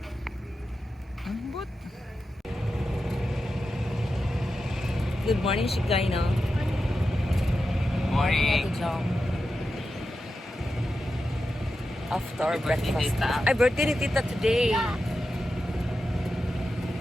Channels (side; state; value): both; normal; correlation 0.90